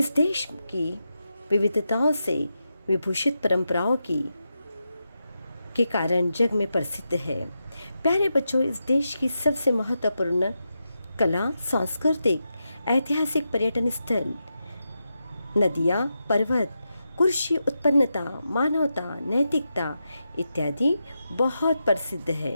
देश की विविधताओं से विभूषित परंपराओं के कारण जग में प्रसिद्ध है। प्यारे बच्चों, इस देश की सबसे महत्वपूर्ण कला, सांस्कृतिक, ऐतिहासिक पर्यटन स्थल, नदियाँ, पर्वत, कृषि उत्पन्नता, मानवता, नैतिकता इत्यादि बहुत प्रसिद्ध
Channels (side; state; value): both; inverted; correlation -0.88